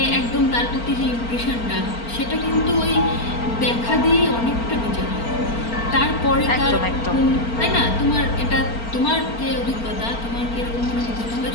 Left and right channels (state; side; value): late; right; 4.4 ms